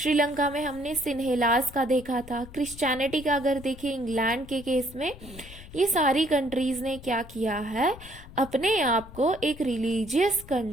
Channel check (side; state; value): left; noise; rumble, 17 dB below the sound